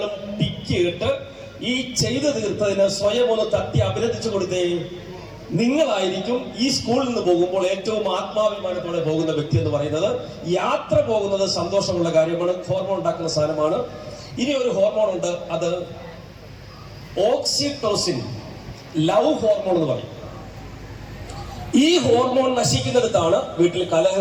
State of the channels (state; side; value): identical; both; correlation 1.00